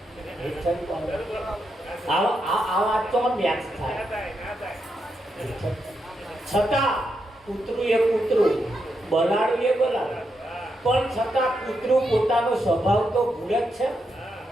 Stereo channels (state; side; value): normal; both; correlation 0.83